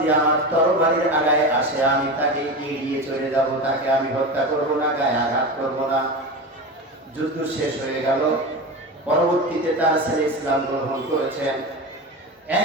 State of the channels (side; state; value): both; normal; correlation 0.24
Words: আমার তরবারির আগায় আসে আমি তাকে এড়িয়ে চলে যাব, তাকে আমি হত্যা করব না, গায়ে আঘাত করব না। যুদ্ধ শেষ হয়ে গেল। পরবর্তীতে তার ছেলে ইসলাম গ্রহণ করেছেন।